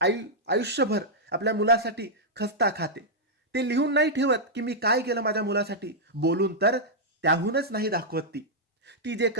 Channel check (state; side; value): normal; both; correlation -0.07